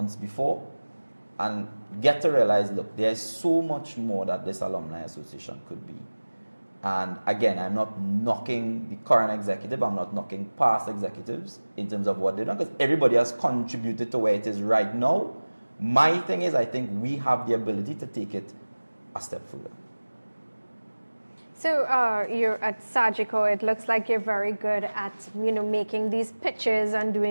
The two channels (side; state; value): both; inverted; correlation -1.00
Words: before, and get to realize, look, there's so much more that this alumni association could be. And again, I'm not knocking the current executive, I'm not knocking past executives in terms of what they've done, because everybody has contributed to where it is right now. My thing is, I think we have the ability to take it a step further. So you're at Sajiko. It looks like you're very good at, you know, making these pitches and